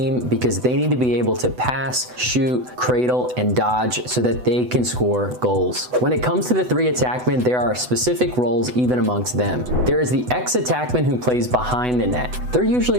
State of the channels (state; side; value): late; left; 8.0 ms